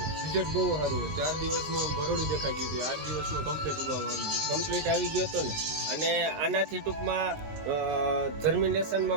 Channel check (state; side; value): late; left; 19 ms